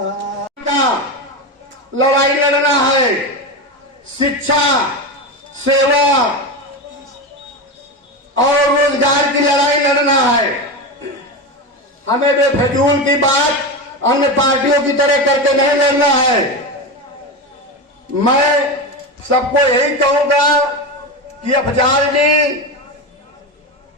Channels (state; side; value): normal; both; correlation 0.19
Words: लड़ाई लड़ना है, शिक्षा, सेवा और रोजगार की लड़ाई लड़ना है। हमें बेफजूल की बात अन्य पार्टियों की तरह करके नहीं लड़ना है। मैं सबको यही कहूंगा कि अफजाल जी